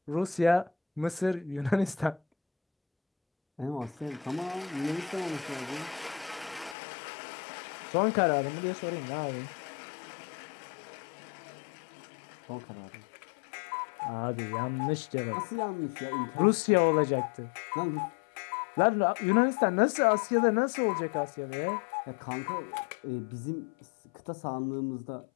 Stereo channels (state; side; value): drops out; right; at 6.8 s